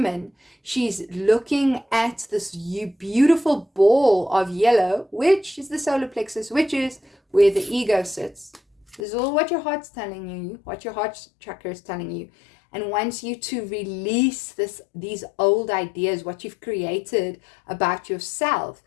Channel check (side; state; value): right; drops out; at 9.0 s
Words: she's looking at this beautiful ball of yellow, which is the solar plexus, which is where the ego sits. This is all what your heart's telling you, what your heart chakra is telling you, and wants you to release these old ideas, what you've created about yourself,